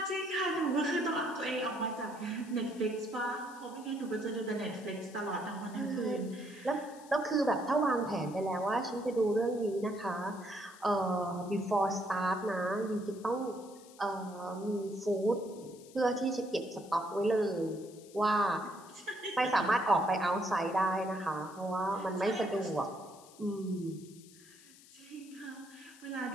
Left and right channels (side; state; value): left; noise; hiss, 22 dB below the sound